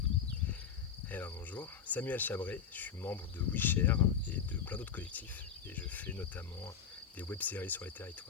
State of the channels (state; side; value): quieter; right; 7.5 dB